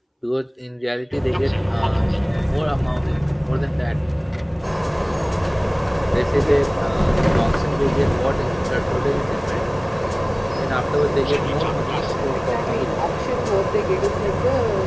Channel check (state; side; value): identical; both; correlation 1.00